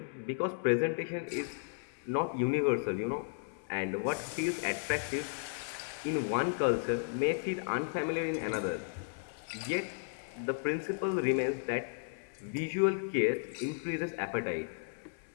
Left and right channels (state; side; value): silent; right; 55 dB below the other